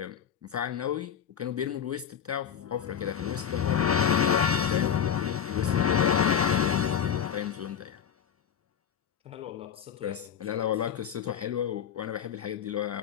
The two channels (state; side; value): quieter; right; 8.4 dB